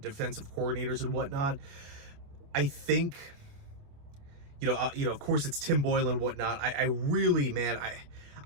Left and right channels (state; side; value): late; left; 28 ms